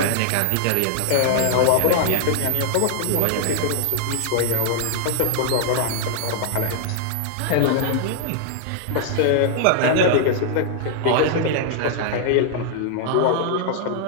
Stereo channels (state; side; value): different; both; correlation 0.00